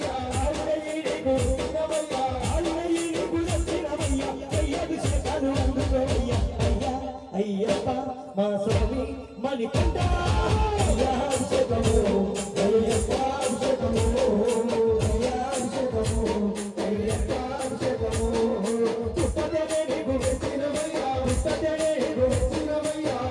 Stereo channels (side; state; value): both; identical; correlation 1.00